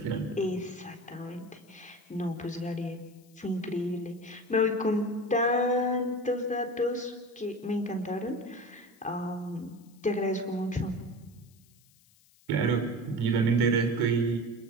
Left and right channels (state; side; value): noise; left; hiss, 30 dB below the sound